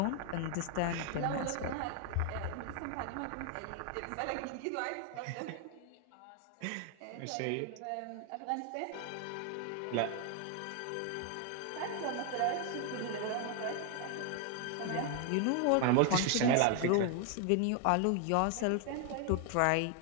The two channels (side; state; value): both; different; correlation 0.01